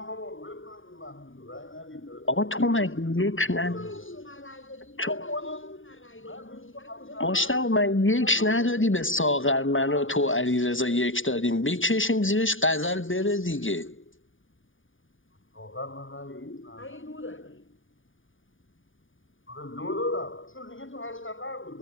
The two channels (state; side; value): late; right; 0.57 ms